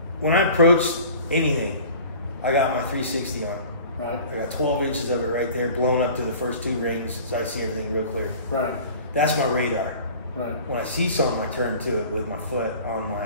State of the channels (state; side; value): inverted; both; correlation -0.44